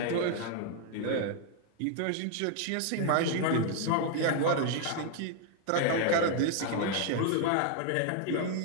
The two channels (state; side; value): different; both; correlation 0.00